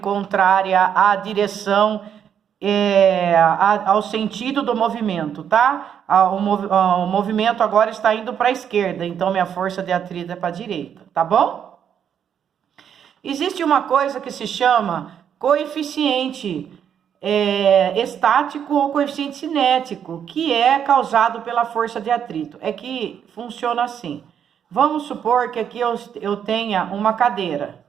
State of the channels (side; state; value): left; quieter; 8.5 dB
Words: à direção, ao sentido do movimento, tá? O movimento agora está indo para a esquerda, então minha força de atrito é para a direita, tá bom? Existe uma coisa que se chama coeficiente estático ou coeficiente cinético, que é causado pela força de atrito. É que funciona assim. Vamos supor que aqui eu tenha uma cadeira,